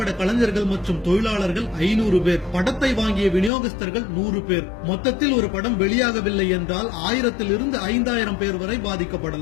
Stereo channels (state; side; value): drops out; right; at 3.5 s